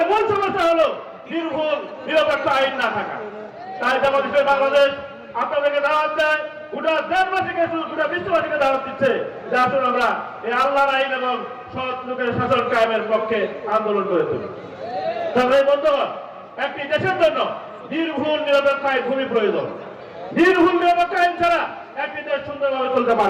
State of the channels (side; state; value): both; identical; correlation 1.00